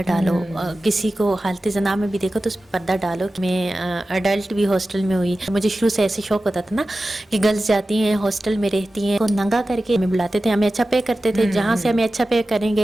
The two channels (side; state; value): both; normal; correlation 0.95